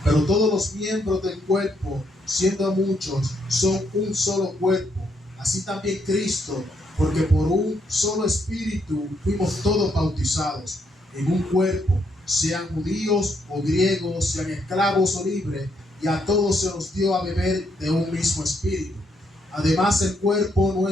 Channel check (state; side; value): normal; both; correlation 0.75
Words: pero todos los miembros del cuerpo, siendo muchos, son un solo cuerpo. Así también Cristo, porque por un solo espíritu fuimos todos bautizados en un cuerpo, sean judíos o griegos, sean esclavos o libres, y a todos se nos dio a beber de un mismo espíritu. Además, el cuerpo no